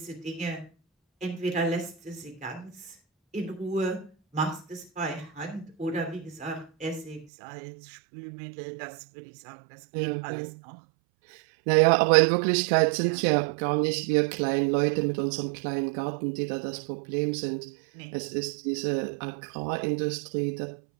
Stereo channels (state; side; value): drops out; left; at 7.2 s